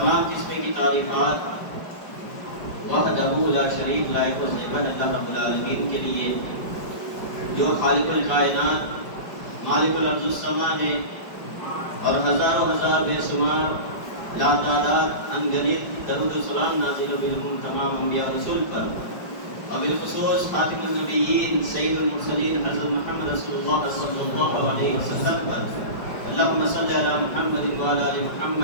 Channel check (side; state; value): right; late; 5.1 ms